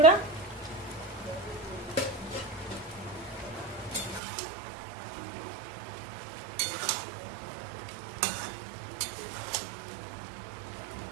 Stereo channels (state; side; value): drops out; left; at 4.2 s